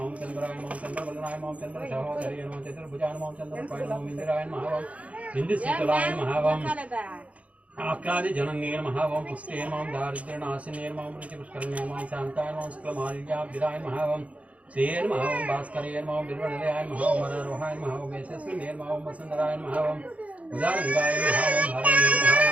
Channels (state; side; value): late; left; 0.066 ms